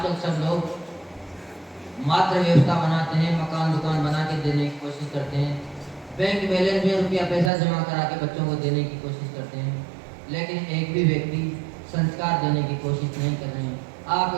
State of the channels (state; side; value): drops out; left; at 7.5 s